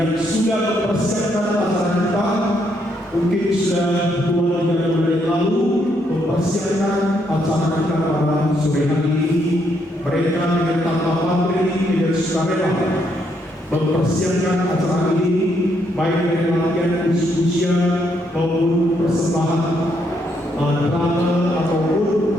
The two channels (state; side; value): normal; both; correlation 0.75